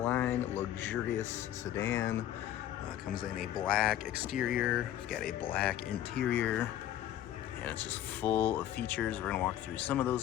luxurious sedan. Comes in a black exterior, we've got a black interior, and it's just full of features. We're going to walk through some of those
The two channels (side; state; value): right; quieter; 12.0 dB